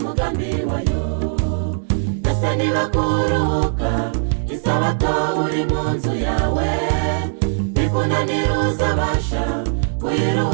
wayo. Ese niba kuruhuka isabato uri mu nzu yawe bikunanira, uzabasha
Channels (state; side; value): silent; left; 66 dB below the other